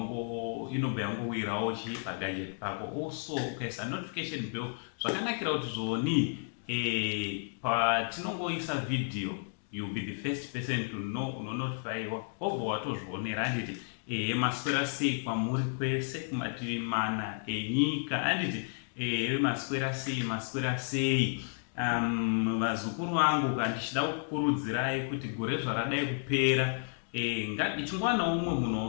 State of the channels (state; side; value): silent; right; digital silence